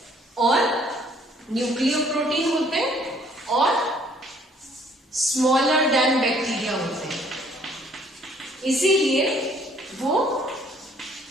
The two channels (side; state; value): both; normal; correlation 0.61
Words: और न्यूक्लियोप्रोटीन होते हैं, और स्मॉलर देन बैक्टीरिया होते हैं। इसीलिए वो